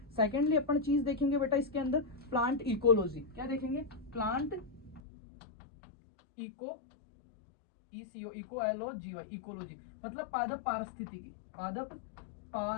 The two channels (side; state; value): right; drops out; at 5.0 s